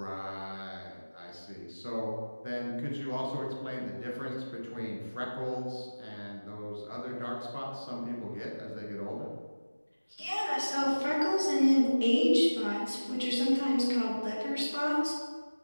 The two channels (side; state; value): both; inverted; correlation -1.00